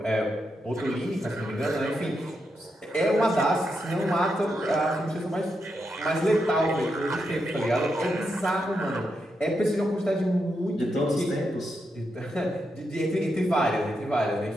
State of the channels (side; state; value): both; normal; correlation 0.84